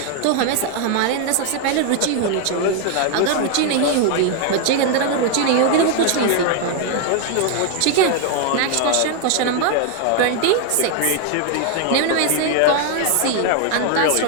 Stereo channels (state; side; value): different; both; correlation 0.00